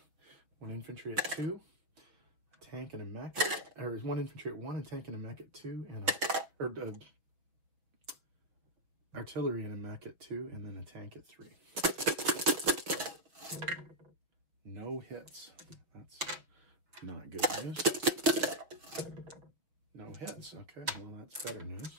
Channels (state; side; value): late; left; 6.2 ms